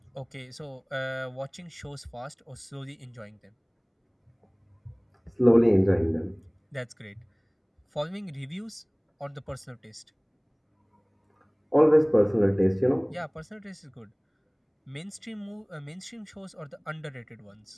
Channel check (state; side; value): identical; both; correlation 1.00